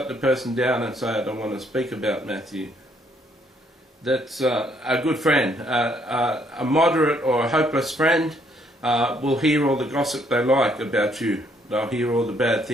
the person down and say, I don't want to speak about Matthew. That's a good friend. A moderate or a hopeless friend will hear all the gossip they like about you. They'll hear all the bad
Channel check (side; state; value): both; normal; correlation 0.68